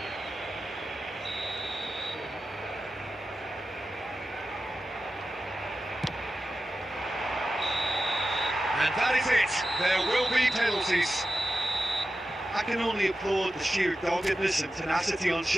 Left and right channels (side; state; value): both; normal; correlation 0.92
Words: And that is it. There will be penalties. I can only applaud the sheer doggedness and tenacity on